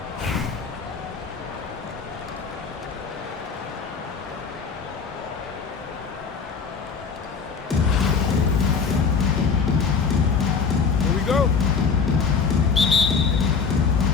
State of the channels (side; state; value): right; quieter; 5.4 dB